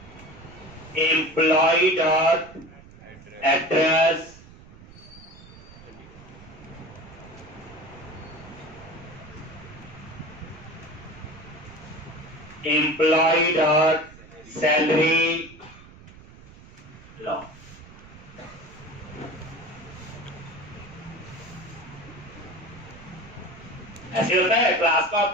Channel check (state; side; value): noise; right; rumble, 20 dB below the sound